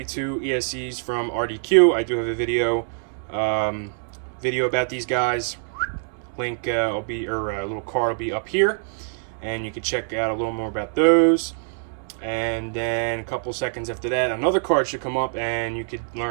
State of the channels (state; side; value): silent; left; 62 dB below the other